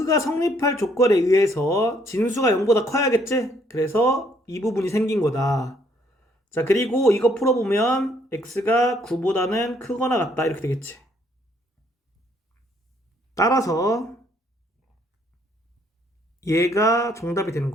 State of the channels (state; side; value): normal; both; correlation 0.67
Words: 성립할 조건에 의해서 진수가 0보다 커야겠지? 그래서 이 부분이 생긴 거다. 자, 그리고 이거 풀어보면 x가 9보다는 크거나 같다. 이렇게 되겠지. 따라서 얘가 정답이 되는